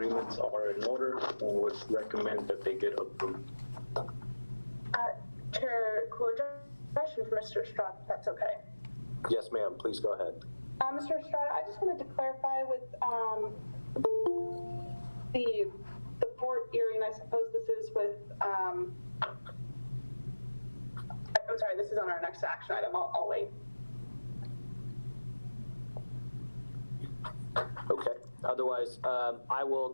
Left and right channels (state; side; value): inverted; both; correlation -1.00